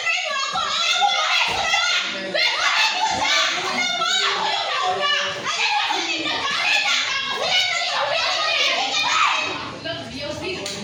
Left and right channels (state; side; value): identical; both; correlation 1.00